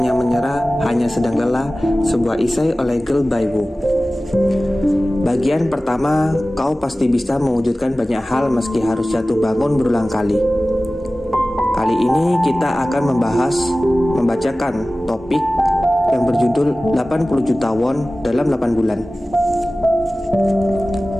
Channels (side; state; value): both; normal; correlation 0.97